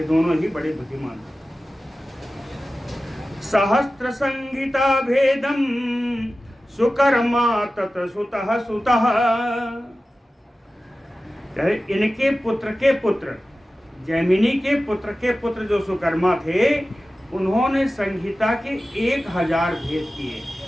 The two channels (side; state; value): both; normal; correlation 0.95